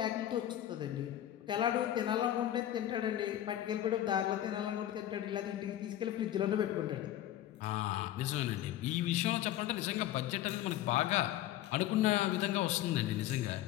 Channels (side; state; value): right; quieter; 12.8 dB